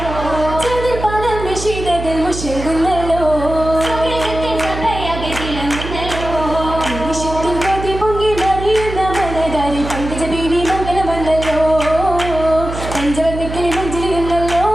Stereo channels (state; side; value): noise; right; hum, 8 dB below the sound